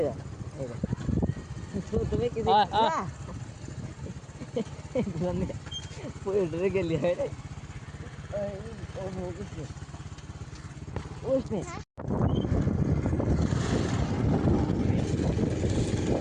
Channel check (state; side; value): identical; both; correlation 1.00